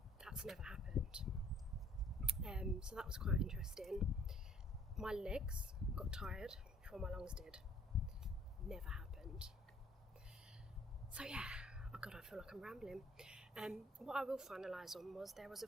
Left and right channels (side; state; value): both; normal; correlation 0.59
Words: That's never happened. So that was quite interesting. My legs got tired before my lungs did. Never happened. So yeah, oh god, I feel like I'm rambling. What I will finalise on was there was a